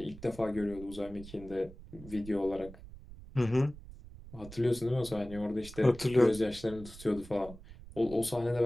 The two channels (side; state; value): right; noise; rumble, 16 dB below the sound